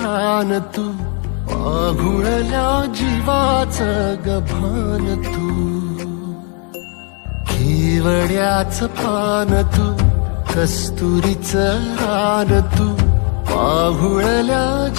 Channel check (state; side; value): quieter; right; 38.3 dB